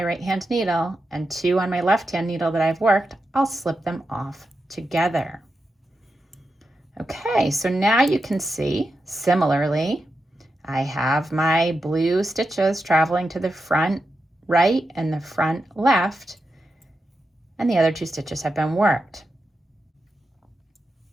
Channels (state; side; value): normal; both; correlation 0.88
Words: right hand needle and 2 on my left hand needle that I've worked, I'll slip them off together. Okay, so now you can see, similarly, I have my blue stitches traveling to the front right and the front left, and the other 2 stitches have been worked.